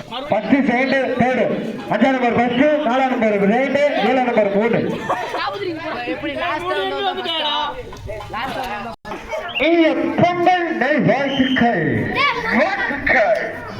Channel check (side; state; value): both; identical; correlation 1.00